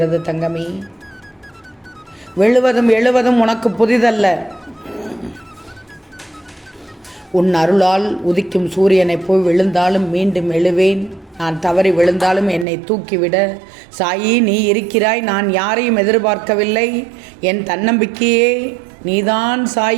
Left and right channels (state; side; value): drops out; left; at 12.7 s